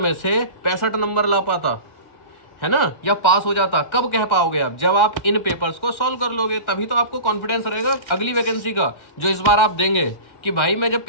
से 65 नंबर ला पाता, है ना, या पास हो जाता। कब कह पाओगे आप? जब आप इन पेपर्स को सॉल्व कर लोगे, तभी तो आपको कॉन्फिडेंस रहेगा अगली वैकेंसी का जो इस बार आप देंगे कि भाई मैं जब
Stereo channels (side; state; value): right; late; 1.4 ms